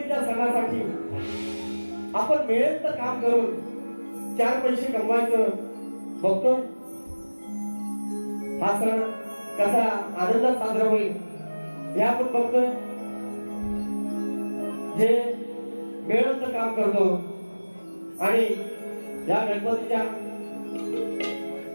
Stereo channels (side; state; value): both; inverted; correlation -1.00